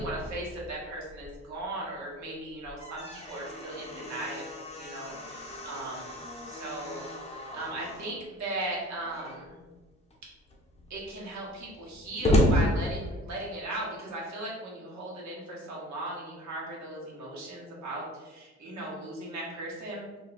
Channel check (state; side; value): normal; both; correlation 0.42